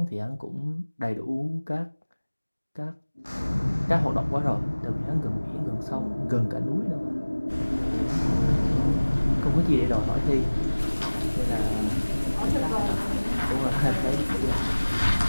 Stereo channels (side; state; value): both; inverted; correlation -1.00